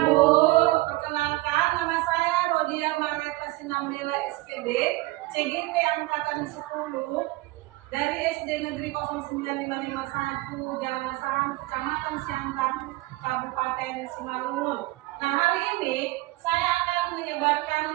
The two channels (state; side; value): quieter; left; 20.2 dB